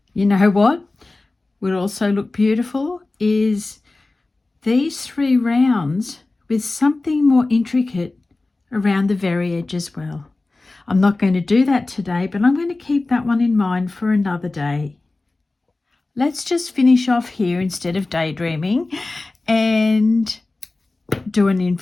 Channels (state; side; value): quieter; right; 3.2 dB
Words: You know what would also look beautiful is these 3 rounds with something more intricate around the very edge as well. I'm not going to do that today, but I'm going to keep that one in mind for another day. Let's just finish off here instead of daydreaming and do an